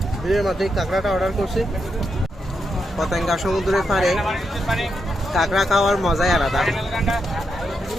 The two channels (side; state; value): both; normal; correlation 0.83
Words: ভিড়ের মধ্যে কাঁকড়াটা অর্ডার করছি। পতেঙ্গা সমুদ্রের পাড়ে কাঁকড়া খাওয়ার মজাই আলাদা।